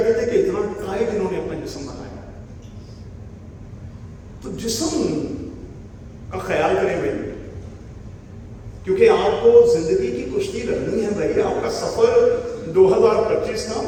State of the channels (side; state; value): both; identical; correlation 1.00